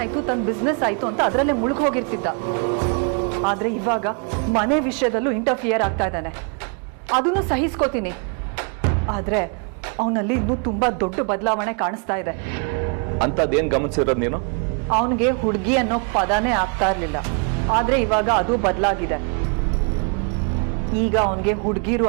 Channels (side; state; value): left; quieter; 38.8 dB